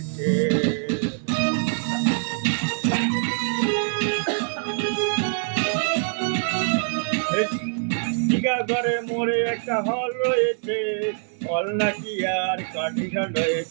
টিকাগড়ে মোড়ে একটা হল রয়েছে হল নাকি আর কন্ডিশন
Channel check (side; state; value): left; silent; 62 dB below the other